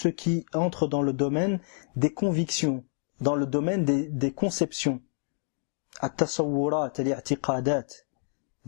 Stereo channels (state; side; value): silent; right; digital silence